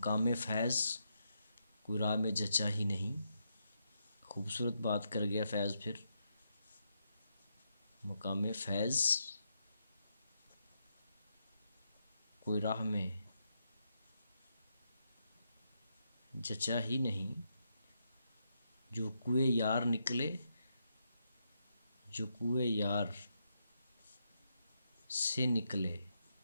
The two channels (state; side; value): inverted; both; correlation -0.81